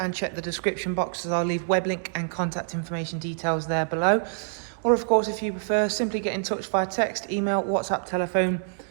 check the description box, as I'll leave web link and contact information details there below. Or of course, if you prefer, simply get in touch via text, email, WhatsApp, telephone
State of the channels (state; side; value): silent; left; digital silence